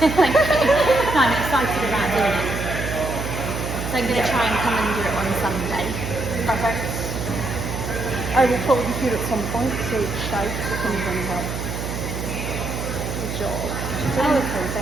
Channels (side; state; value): right; noise; hum, 5 dB below the sound